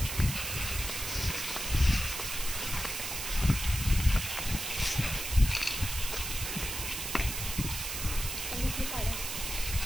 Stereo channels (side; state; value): right; noise; hiss, 4 dB below the sound